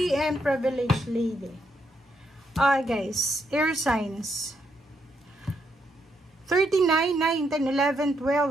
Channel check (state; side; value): normal; both; correlation 0.78